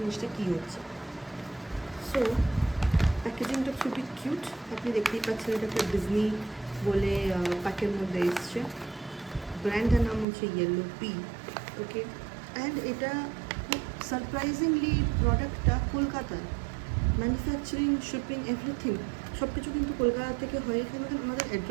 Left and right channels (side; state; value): left; drops out; at 10.2 s